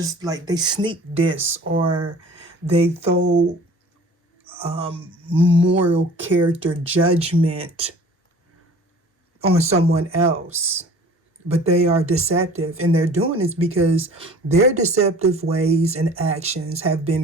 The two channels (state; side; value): normal; both; correlation 0.46